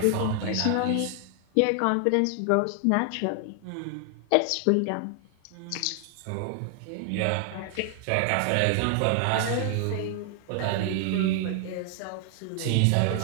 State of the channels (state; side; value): different; both; correlation 0.00